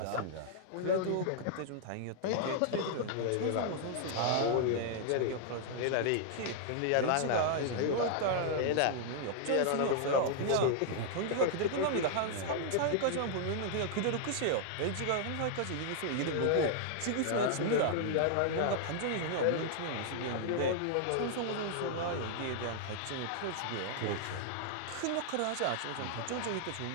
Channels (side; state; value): both; different; correlation -0.01